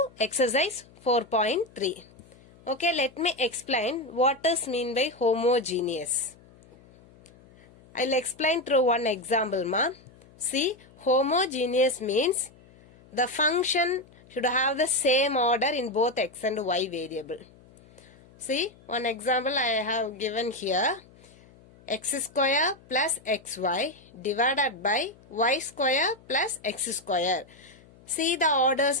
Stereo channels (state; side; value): noise; left; hum, 26 dB below the sound